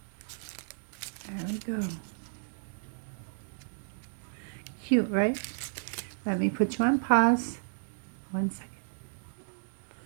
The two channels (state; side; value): silent; left; digital silence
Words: There we go. Cute, right? Let me put you on pause. 1 second.